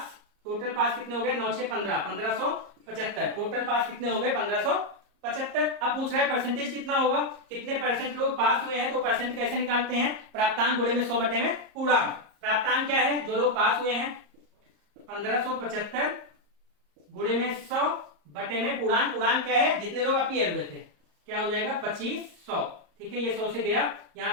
कितने हो गए 9 6 15, 1575। टोटल पास कितने हो गए 1575। अब पूछ रहा है परसेंटेज कितना होगा, कितने परसेंट लोग पास हुए हैं, तो परसेंट कैसे निकालते हैं, प्राप्तांक गुणे में 100 में पूर्णांक। प्राप्तांक क्या है, जो लोग पास हुए हैं 1575 गुणे में 100 में पूर्णांक। पूर्णांक क्या है, जितने लोग अपीयर हुए थे, क्या हो जाएगा 2500। ठीक है, ये 100 से गया, यहाँ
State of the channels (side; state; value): left; late; 34 ms